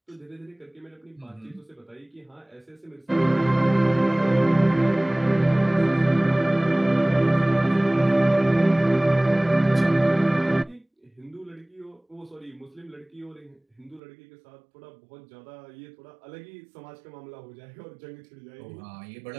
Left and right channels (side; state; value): left; drops out; at 14.0 s